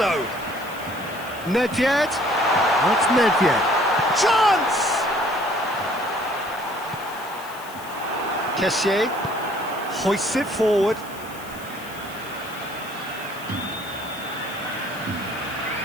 Nedved. That's Nedved. Chance! Kessié hoists it forward.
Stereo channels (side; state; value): left; noise; hiss, 18 dB below the sound